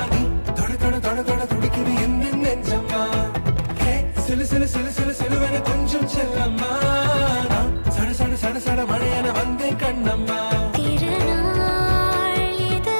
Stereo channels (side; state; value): both; inverted; correlation -1.00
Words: நீ தொட தொட தொட தொட துடிக்குது எந்த நெஞ்சம்மா ஹே சிலு சிலு சிலு சிலு சிலுவன கொஞ்சம் செல்லம்மா நான் சட சட சட சட மழையன வந்தேன் கண்ணம்மா